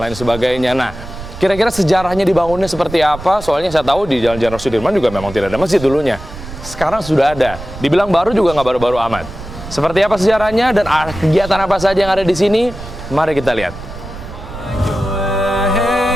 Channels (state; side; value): noise; right; rumble, 13 dB below the sound